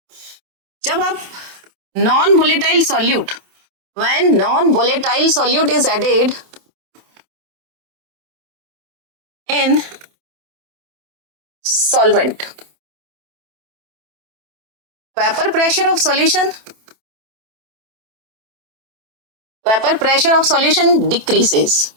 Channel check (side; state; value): left; late; 27 ms